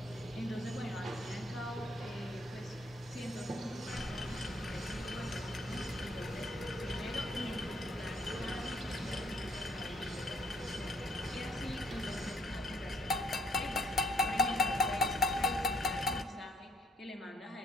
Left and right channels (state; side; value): normal; both; correlation 0.65